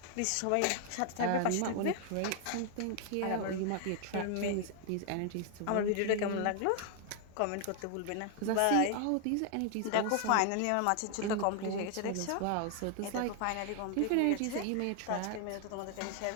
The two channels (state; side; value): different; both; correlation 0.00